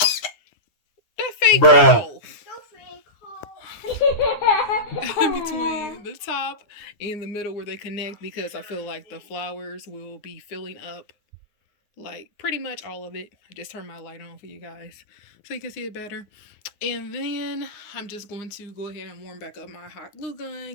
That fake hole in between the top and the middle where they connect, because I feel like the flowers will be filling up like pretty much all of it. I just turned my light on for you guys so you can see it better. And then I'm just going to go ahead and warm back up my hot glue gun,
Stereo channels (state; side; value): late; right; 9.7 ms